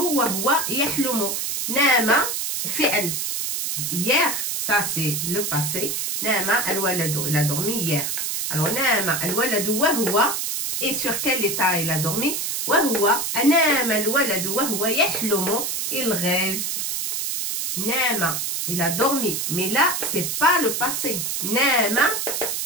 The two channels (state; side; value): noise; right; hiss, 1 dB below the sound